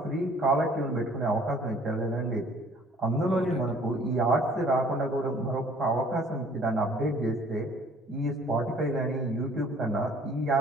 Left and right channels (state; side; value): normal; both; correlation 0.55